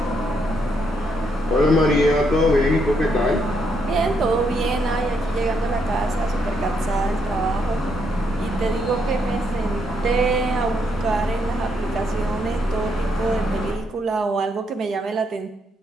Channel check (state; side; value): normal; both; correlation 0.76